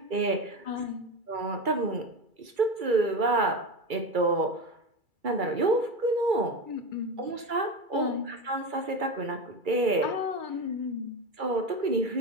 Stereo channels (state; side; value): late; left; 2.3 ms